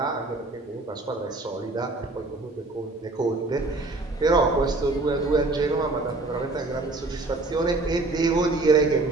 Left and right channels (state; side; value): quieter; left; 3.1 dB